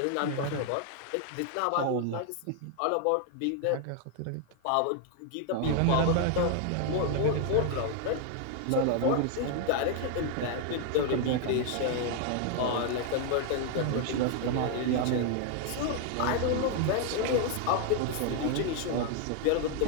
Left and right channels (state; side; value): different; both; correlation 0.00